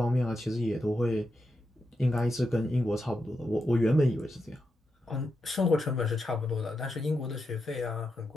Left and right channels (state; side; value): normal; both; correlation 0.86